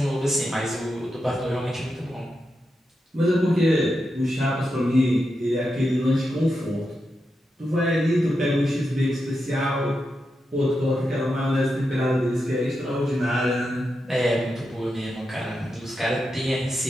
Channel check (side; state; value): both; normal; correlation 0.87